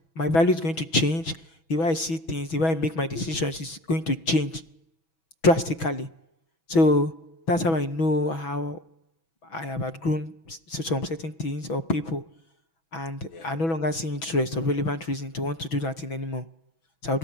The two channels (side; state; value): right; late; 6.1 ms